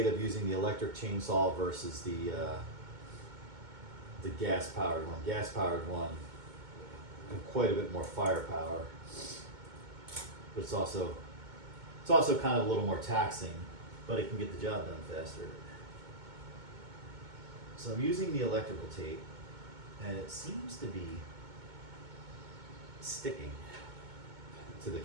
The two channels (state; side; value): late; left; 2.2 ms